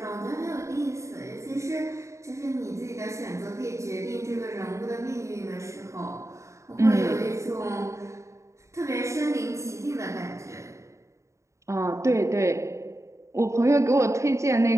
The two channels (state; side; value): late; left; 0.14 ms